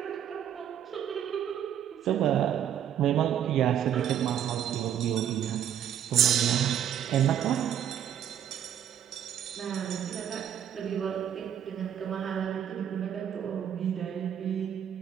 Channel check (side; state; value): left; quieter; 9.6 dB